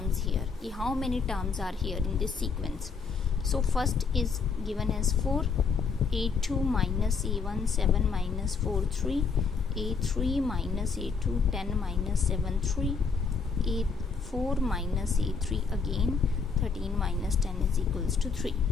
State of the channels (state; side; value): quieter; right; 5.2 dB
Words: here. How many terms are here in this sequence? So first is given as 4, a2 minus a1, 7 minus 4, 3, a3 minus a2, 10 minus 7, 3, a4 minus a3 again, 13 minus 10 is equals to 3.